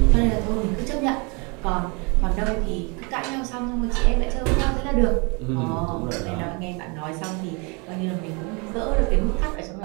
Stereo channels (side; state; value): left; quieter; 31.1 dB